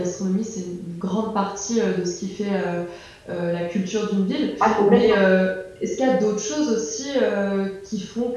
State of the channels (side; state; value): both; identical; correlation 1.00